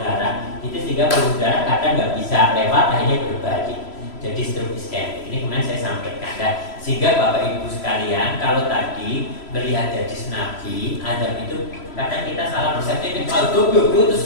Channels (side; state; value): right; late; 3.0 ms